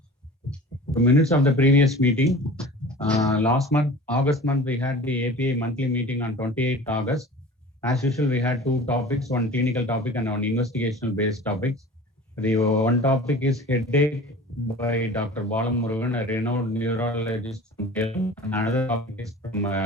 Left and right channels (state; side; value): normal; both; correlation 0.40